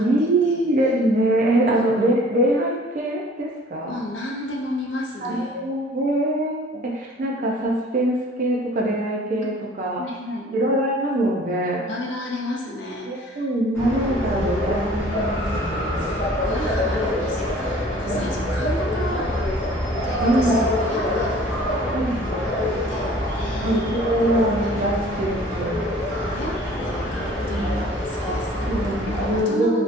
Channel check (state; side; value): normal; both; correlation 0.51